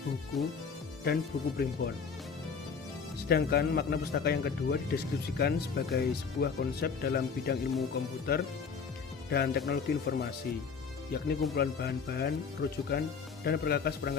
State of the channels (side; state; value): right; quieter; 5.8 dB